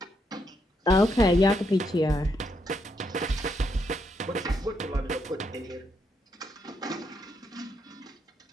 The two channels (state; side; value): normal; both; correlation 0.77